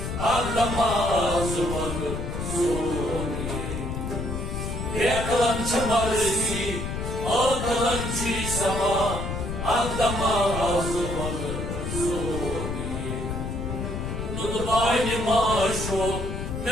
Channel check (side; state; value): left; noise; rumble, 4 dB below the sound